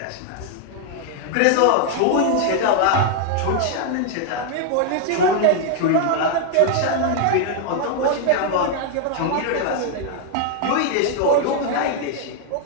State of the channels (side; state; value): both; different; correlation 0.00